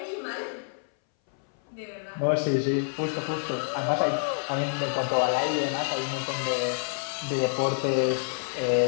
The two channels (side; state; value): right; silent; 60 dB below the other